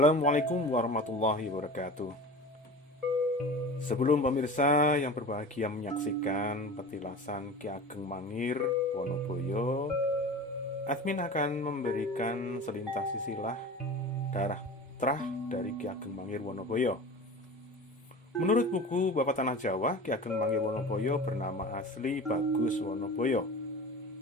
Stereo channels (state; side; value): normal; both; correlation 0.34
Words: warahmatullahi wabarakatuh. Sebelum pemirsa yang berbahagia menyaksikan petilasan Ki Ageng Mangir Wonoboyo, admin akan memberikan selintas silsilah darah terah dari Ki Ageng Mangir Wonoboyo. Menurut buku Bapak Tanah Jawa, Ki Ageng Mangir Wonoboyo bernama asli Bagus Wonoboyo.